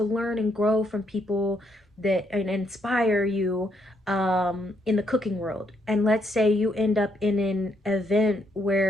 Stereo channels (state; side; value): normal; both; correlation 0.74